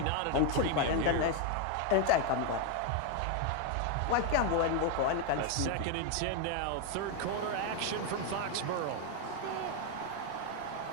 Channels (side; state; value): both; different; correlation 0.01